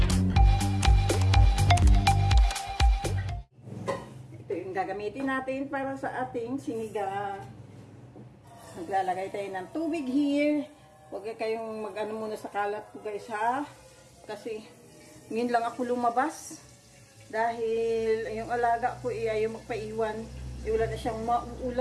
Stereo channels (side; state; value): both; identical; correlation 1.00